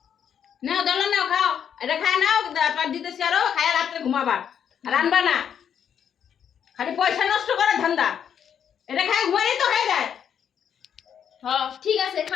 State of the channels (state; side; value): quieter; right; 8.4 dB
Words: নাও দলা নাও খাও এটা খায় নাও পার দিতেছি আরো খায় রাত্রে ঘুমাবা রান্না না খালি পয়সা নষ্ট করে ধান্দা এটা খায় ঘুমাই তো হয়ে যায়। হ্যাঁ ঠিক আছে,